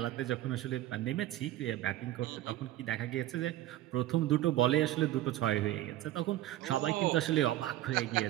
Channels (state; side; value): quieter; left; 14.5 dB